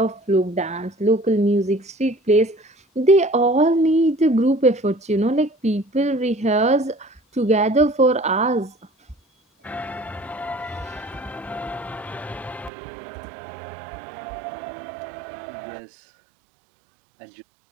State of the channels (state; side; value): drops out; left; at 12.7 s